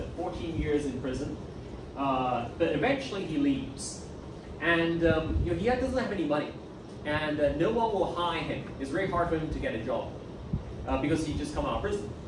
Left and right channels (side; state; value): both; identical; correlation 1.00